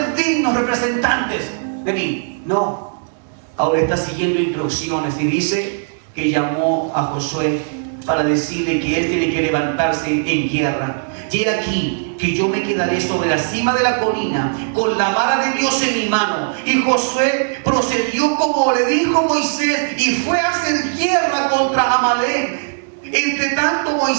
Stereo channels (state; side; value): silent; left; digital silence